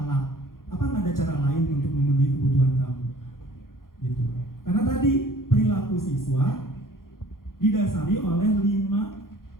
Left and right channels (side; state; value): right; late; 0.91 ms